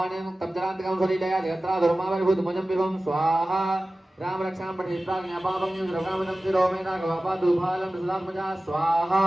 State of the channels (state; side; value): normal; both; correlation 0.96